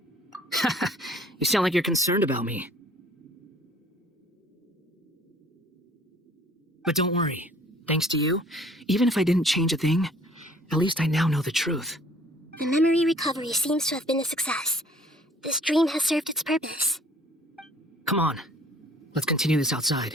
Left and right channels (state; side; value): normal; both; correlation 0.55